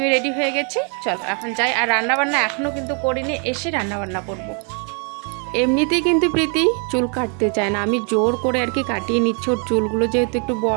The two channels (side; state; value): left; quieter; 38.3 dB